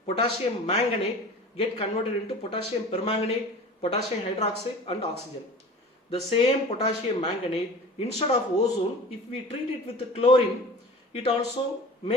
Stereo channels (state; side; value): normal; both; correlation 0.39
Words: potassium manganate get converted into potassium permanganate, potassium hydroxide and oxygen. The same potassium manganate, instead of ozone, if we treat it with chlorine, it also